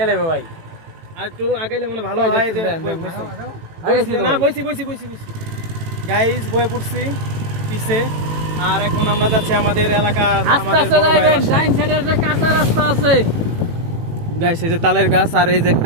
লেবে ভাই, আর একটু আগাইলে মনে ভালো হয়। না বইছি বইছি বইছি বইছি গাইস, বয়ে পড়ছি পিছে। আর এখন আমরা যাচ্ছি আমাদের এলাকার ডাইন সাইডের যে কাঁচা রাস্তা আছে গাইস, এই যে তালের গাছ আর এই যে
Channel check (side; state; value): left; late; 18 ms